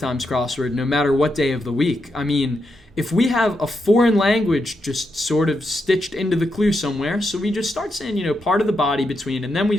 crossword, no matter what day of the week. If we have a foreign language just sort of stitched into the clue somewhere, so we just start saying, part of the body between, and then we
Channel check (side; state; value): both; normal; correlation 0.83